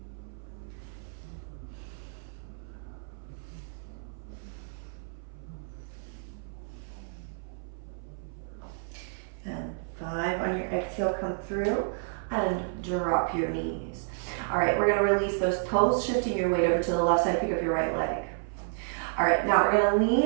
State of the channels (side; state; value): left; silent; 57 dB below the other